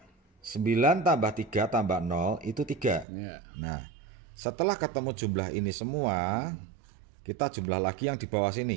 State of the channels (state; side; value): drops out; left; at 3.1 s